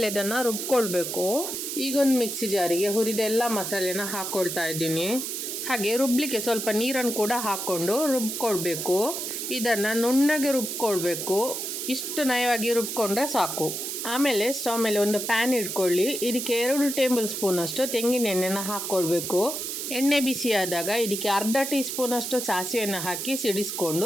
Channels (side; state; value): right; noise; hiss, 4 dB below the sound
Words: ಇದನ್ನು ರುಬ್ಕೊಳ್ಬೇಕು. ಈಗ ಒಂದು ಮಿಕ್ಸಿ ಜಾರಿಗೆ ಹುರಿದ ಎಲ್ಲ ಮಸಾಲೆನ ಹಾಕ್ಕೊಳ್ತಾ ಇದ್ದೀನಿ. ಹಾಗೆ ರುಬ್ಲಿಕ್ಕೆ ಸ್ವಲ್ಪ ನೀರನ್ನು ಕೂಡ ಹಾಕ್ಕೊಂಡು ರುಬ್ಕೊಳ್ಬೇಕು. ಇದನ್ನು ನುಣ್ಣಗೆ ರುಬ್ಕೊಳ್ಬೇಕು. ಇಷ್ಟು ನಯವಾಗಿ ರುಬ್ಕೊಂಡ್ರೆ ಸಾಕು. ಆಮೇಲೆ ಸ್ಟವ್ ಮೇಲೆ ಒಂದು ಪ್ಯಾನ್ ಇಟ್ಕೊಳ್ಳಿ. ಇದಕ್ಕೆ 2 ಟೇಬಲ್ ಸ್ಪೂನ್ ಅಷ್ಟು ತೆಂಗಿನ ಎಣ್ಣೆನ ಹಾಕ್ಕೊಳ್ಬೇಕು. ಎಣ್ಣೆ ಬಿಸಿ ಆದಾಗ ಇದಕ್ಕೆ ಅರ್ಧ ಟೀ ಸ್ಪೂನ್ ಅಷ್ಟು ಸಾಸಿವೆಯನ್ನು ಹಾಕಿ ಸಿಡಿಸ್ಕೊಂಡು